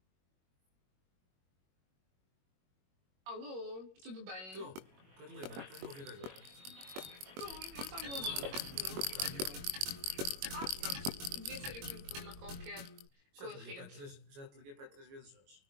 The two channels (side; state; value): left; late; 21 ms